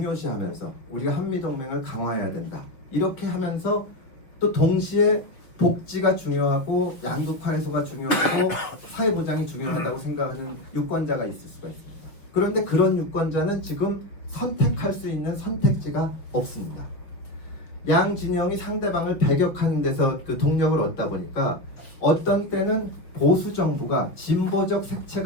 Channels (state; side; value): late; right; 5.9 ms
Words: 우리가 한미동맹을 강화해야 된다. 이렇게 하면서 또 동시에 복지가 중요하고 양극화 해소가 중요하고 사회보장이 중요하다고 생각하는 유권자가 있을 수가 있습니다. 그런데 그런 유권자는 지금 선택할 수 있는 선택지가 없습니다. 양 진영이 상대방을 배격하는 데서 그 동력을 얻다 보니까 어떤 때는 보수 정부가 진보적